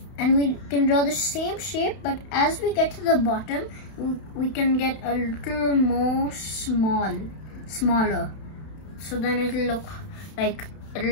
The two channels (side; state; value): right; late; 31 ms